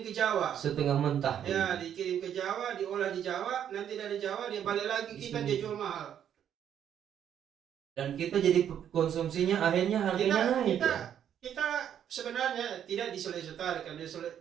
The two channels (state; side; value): quieter; left; 9.5 dB